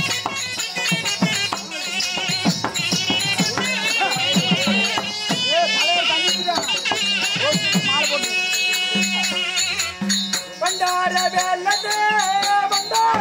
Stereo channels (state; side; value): identical; both; correlation 1.00